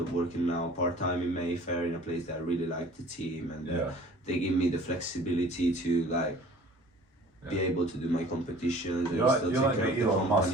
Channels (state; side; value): normal; both; correlation 0.47